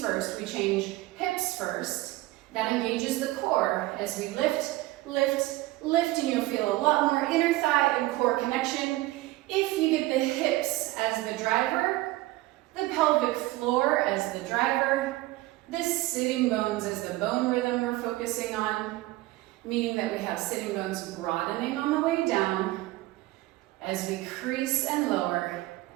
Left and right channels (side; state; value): left; quieter; 18.4 dB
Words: first, we change hips first. That engages the core as we lift, lift, lift, and you'll feel a lot more inner thigh and core connection. If you get the hips as the driver, the pelvic floor as the driver, the sitting bones as the bone rhythm we're focusing on, meaning that we have sitting bones broadening on the way down as we crease and lower.